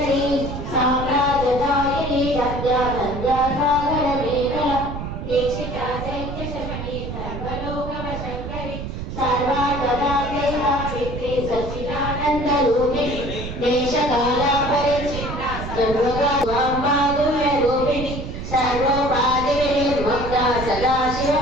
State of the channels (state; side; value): noise; right; rumble, 7 dB below the sound